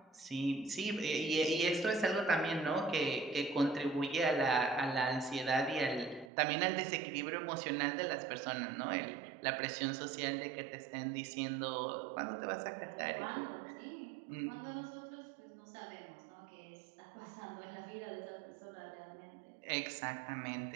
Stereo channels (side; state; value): left; drops out; at 6.3 s